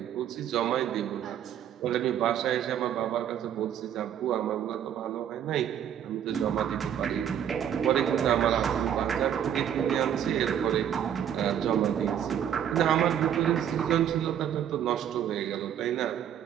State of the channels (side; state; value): left; quieter; 9.6 dB